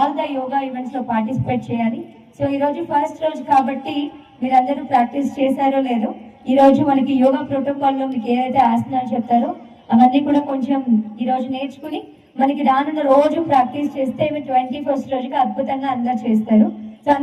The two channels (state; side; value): identical; both; correlation 1.00